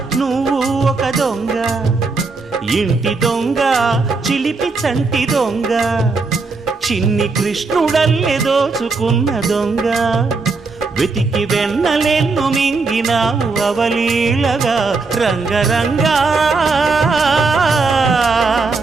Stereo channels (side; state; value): left; quieter; 4.1 dB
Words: నువ్వు ఒక దొంగ, ఇంటి దొంగ చిలిపి చంటి దొంగ, చిన్ని కృష్ణుడల్లే దోచుకున్న దొంగ, వెతికి వెన్నలెన్ను మింగినావు అవలీలగా. రంగరంగ